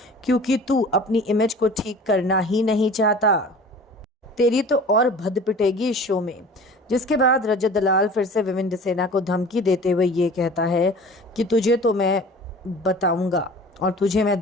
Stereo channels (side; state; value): both; normal; correlation 0.43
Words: क्योंकि तू अपनी इमेज को ठीक करना ही नहीं चाहता। तेरी तो और भद पिटेगी इस शो में। जिसके बाद रजत दलाल फिर से विविन डिसेना को धमकी देते हुए ये कहता है कि तुझे तो मैं बताऊंगा और तुझे मैं